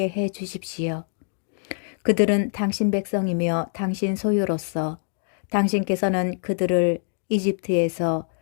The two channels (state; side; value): silent; right; digital silence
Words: 해 주십시오. 그들은 당신 백성이며 당신 소유로서 당신께서는 그들을 이집트에서